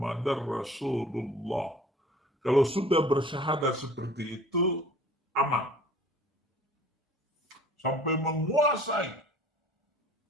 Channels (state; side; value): normal; both; correlation 0.49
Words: rasulullah. Kalau sudah bersyahadat seperti itu, aman. Sampai menguasai